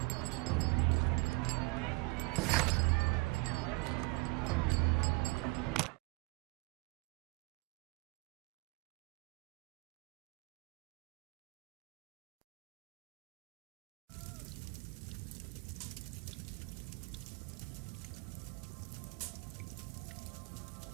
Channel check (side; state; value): left; quieter; 27.4 dB